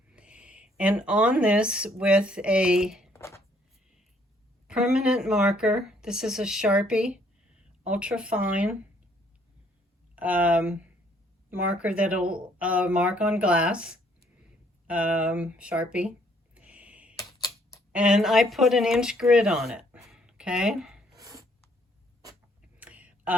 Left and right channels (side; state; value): both; normal; correlation 0.65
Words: And on this, with a permanent marker, this is a Sharpie ultra fine marker that'll mark on glass, Sharpie. And I put an inch grid on it, okay?